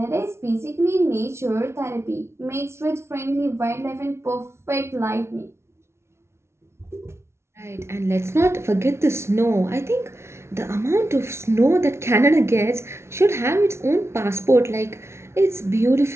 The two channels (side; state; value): left; late; 0.13 ms